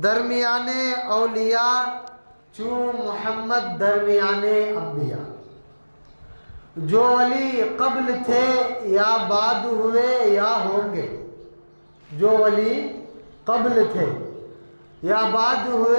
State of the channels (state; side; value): inverted; both; correlation -1.00